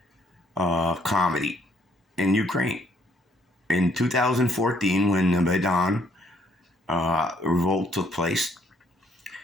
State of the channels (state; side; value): normal; both; correlation 0.67